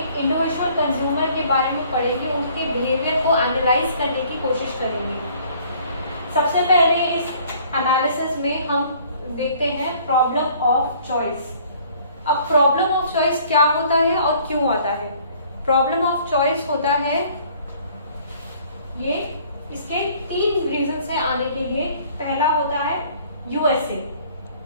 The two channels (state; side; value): inverted; both; correlation -0.57